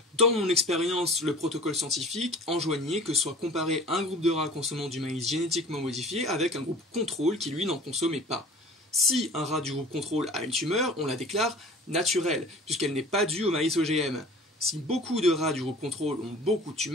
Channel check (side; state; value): both; normal; correlation 0.43